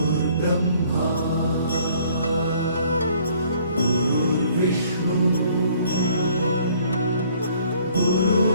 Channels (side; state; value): both; inverted; correlation -0.59